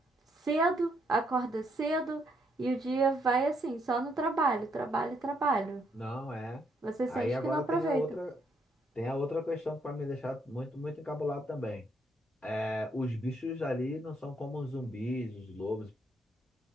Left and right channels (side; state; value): both; normal; correlation 0.73